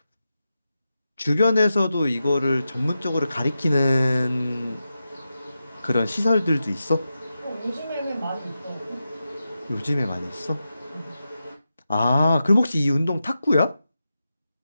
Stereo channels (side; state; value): both; inverted; correlation -0.90